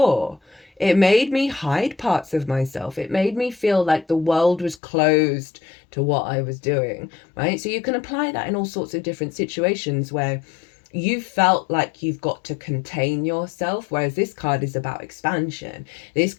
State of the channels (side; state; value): right; drops out; at 4.8 s